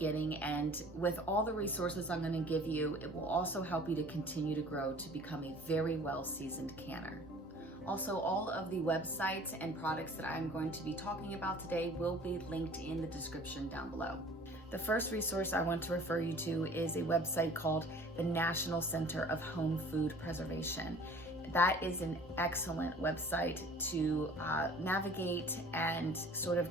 And with all the resources I'm going to give you, it will also help you to continue to grow to become a very well-seasoned canner. Also, all of the websites and products that I'm going to be talking about today will be linked in the description down below. The first resource I want to refer you to is a website called the National Center of Home Food Preservation. That is an excellent website to navigate and sort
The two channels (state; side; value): normal; both; correlation 0.48